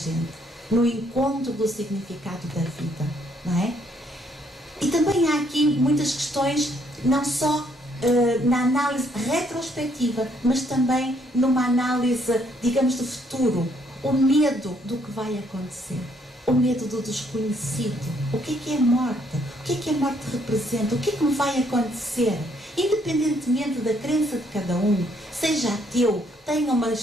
no encontro do significado da vida, não é? E também há aqui muitas questões, não só na análise retrospectiva, mas também numa análise, digamos, de futuro. O medo do que vai acontecer, o medo do desconhecido. O que é a morte? O que a morte representa? O que me vai acontecer? Independentemente da crença de cada um, seja ateu, tenha uma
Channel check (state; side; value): normal; both; correlation 0.69